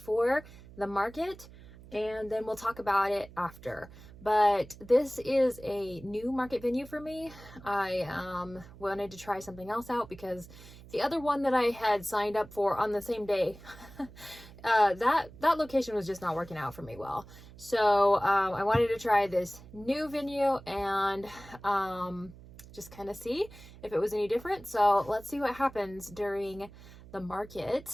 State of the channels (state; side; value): noise; right; hum, 19 dB below the sound